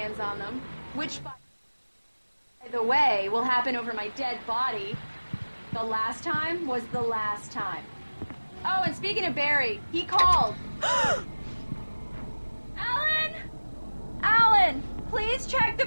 on them. Which, by the way, will happen over my dead body. The last time was the last time. Oh, and speaking of Barry, he called. Alan! Alan! Please check the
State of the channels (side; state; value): both; inverted; correlation -1.00